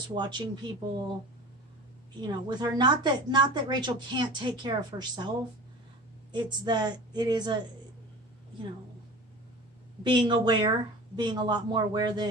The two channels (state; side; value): normal; both; correlation 0.37